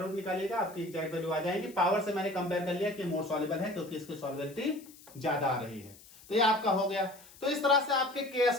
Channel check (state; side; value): noise; left; hiss, 22 dB below the sound